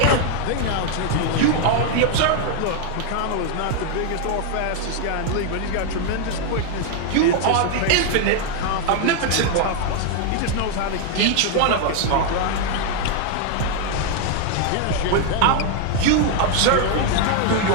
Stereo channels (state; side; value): different; both; correlation 0.00